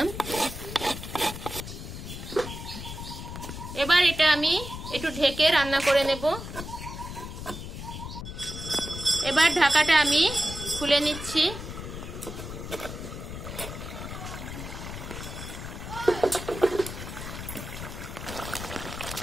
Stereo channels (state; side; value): noise; left; rumble, 9 dB below the sound